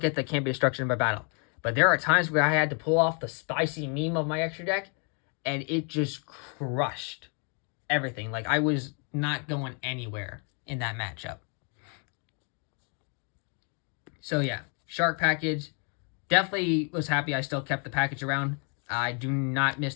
the can't be destruction by battle. But there are times where I had to pull off the spicy meme of my extra deck, and it just crushed everything. Like, I was not going anywhere in that matchup. So yeah, shark package. Definitely was happy I still kept the package around. I do not miss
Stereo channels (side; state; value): right; quieter; 39.0 dB